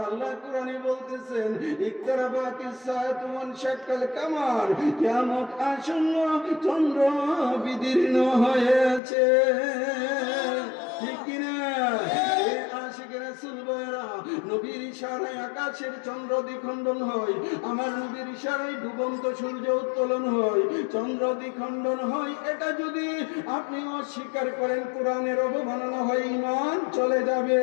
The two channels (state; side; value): drops out; right; at 9.0 s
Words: আল্লাহ কোরআনে বলতেছেন, ইকতারাবাতিস সাআতু ওয়ানশাক্কাল কামার, কিয়ামত আসন্ন, চন্দ্র বিদীর্ণ হয়েছে। ঠিক কিনা? আশিকের রাসূল ভাইরা, নবীর ইশারায় আকাশের চন্দ্র দ্বিখণ্ডন হয়, আমার নবীর ইশারায় ডুবন্ত সূর্য উত্তোলন হয়, চন্দ্র দ্বিখণ্ডন হয়। এটা যদি আপনি অস্বীকার করেন, কোরআনের অবমাননা হয়, ঈমান চলে যাবে।